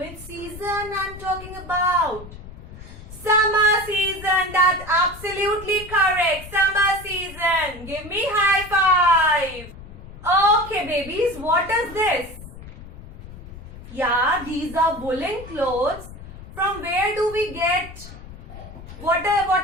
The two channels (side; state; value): left; noise; rumble, 15 dB below the sound